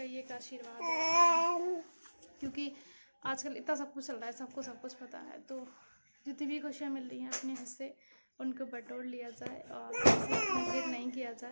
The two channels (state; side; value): inverted; both; correlation -1.00